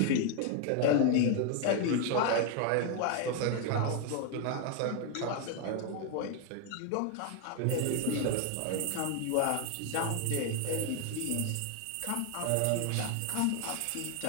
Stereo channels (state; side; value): different; both; correlation 0.01